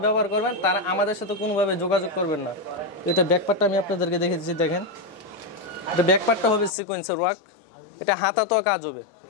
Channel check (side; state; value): right; drops out; at 6.7 s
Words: ব্যবহার করবেন তারা আমাদের সাথে কোনোভাবে যোগাযোগ করবেন না। এটা ব্যাকপার্টটা আমি আপনাদেরকে দেখে দিচ্ছি, দেখেন এটা ব্যাকপার্টটা হবে সিকোয়েন্সের ওয়ার্ক, এটা হাতাতেও কাজ হবে,